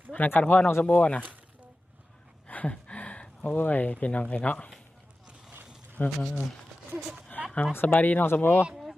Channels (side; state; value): both; normal; correlation 0.94